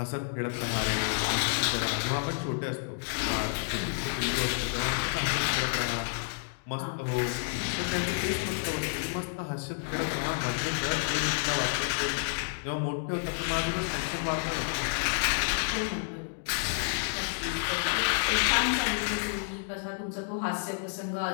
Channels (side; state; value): right; silent; digital silence